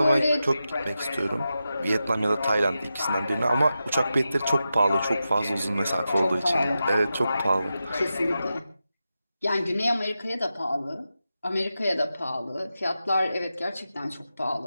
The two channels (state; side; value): inverted; both; correlation -0.91